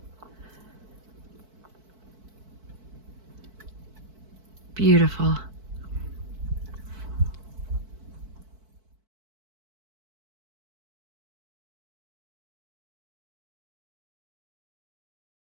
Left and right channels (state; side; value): late; left; 4.6 ms